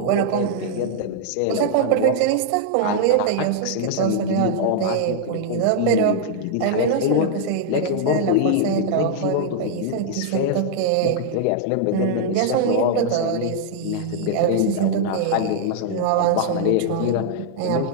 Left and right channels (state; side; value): different; both; correlation -0.01